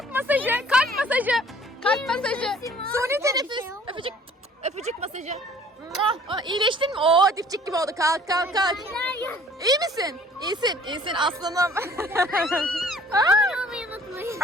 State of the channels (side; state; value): both; normal; correlation 0.54